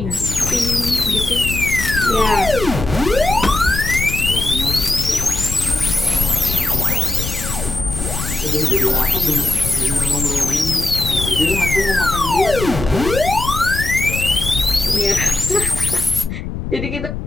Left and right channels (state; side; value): noise; left; rumble, 6 dB below the sound